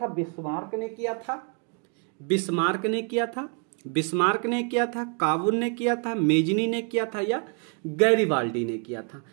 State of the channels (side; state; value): left; quieter; 39.0 dB